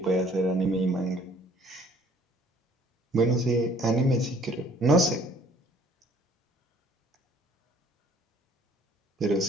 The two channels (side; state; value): both; normal; correlation 0.57